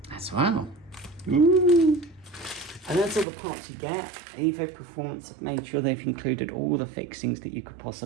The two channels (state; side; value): drops out; left; at 3.2 s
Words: As well. Ooh. And that's all the parts you get. Evo Performance have made sure they've included all the fixings that you could